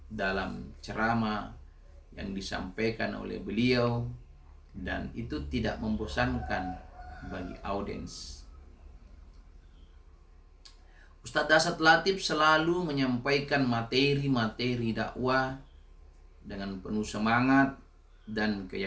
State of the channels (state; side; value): identical; both; correlation 1.00